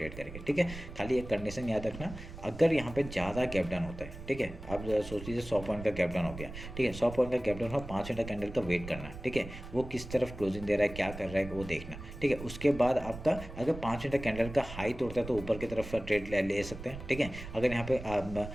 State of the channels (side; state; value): right; noise; rumble, 12 dB below the sound